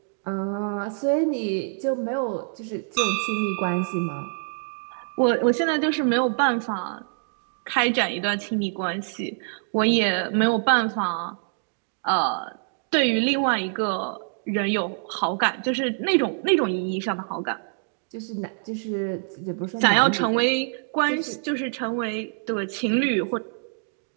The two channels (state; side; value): silent; left; 61 dB below the other